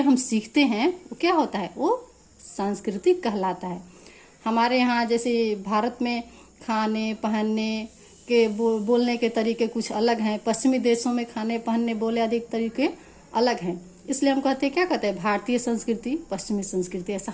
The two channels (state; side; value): identical; both; correlation 1.00